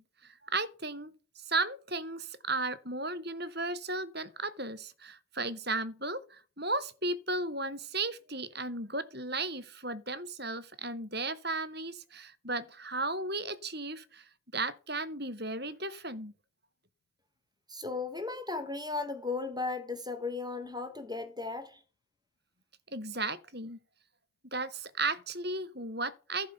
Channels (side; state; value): both; normal; correlation 0.09